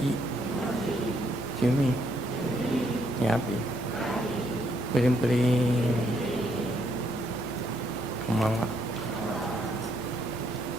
yumi, yapi, puri, konbanwa.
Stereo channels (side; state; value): both; normal; correlation 0.73